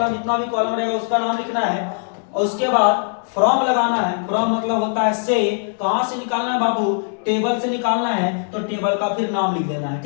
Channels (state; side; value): silent; right; digital silence